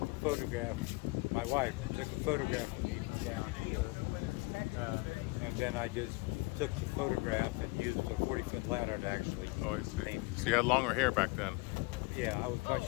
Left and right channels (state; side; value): quieter; right; 25.6 dB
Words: a photograph. My wife took a photograph of me from down here, and then I just took the photograph and used a 40-foot ladder to actually paint it. So you had longer hair back then? Yeah, I was much